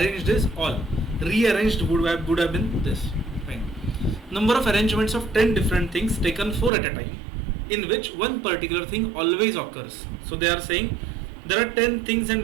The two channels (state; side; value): drops out; left; at 6.7 s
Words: is all. Rearranged would have been this. Fine. Number of arrangements of 10 different things taken 4 at a time, in which one particular thing always occurs. So they are saying there are 10 things and